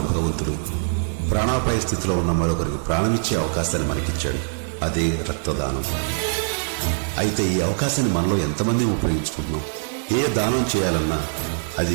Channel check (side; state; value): left; silent; digital silence